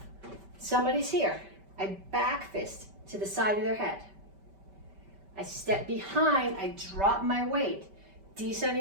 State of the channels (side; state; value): left; late; 5.1 ms